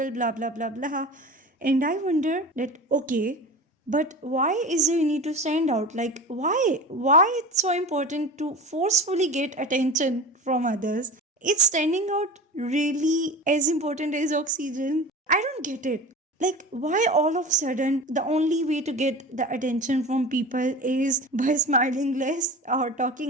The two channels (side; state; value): both; normal; correlation 0.32